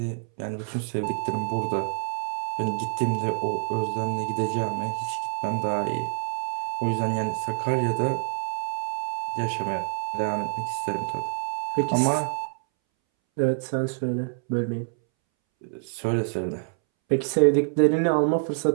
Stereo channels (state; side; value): silent; left; 61 dB below the other